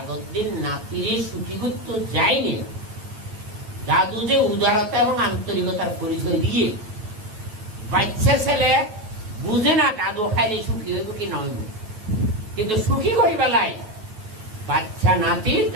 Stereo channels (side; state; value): left; late; 9.2 ms